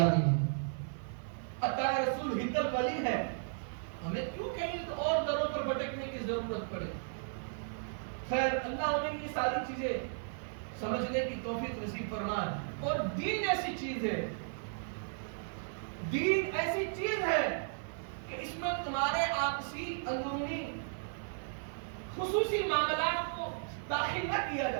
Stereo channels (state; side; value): silent; left; 54 dB below the other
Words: ہے, عطا رسول ہندل ولی ہے. ہمیں کیوں کہیں اور دروں پر بھٹکنے کی ضرورت پڑے. خیر اللہ ہمیں یہ ساری چیزیں سمجھنے کی توفیق نصیب فرمائے. اور دین ایسی چیز ہے, دین ایسی چیز ہے کہ اس میں تمہارے آپسی اندرونی خصوصی معاملات کو داخل نہ کیا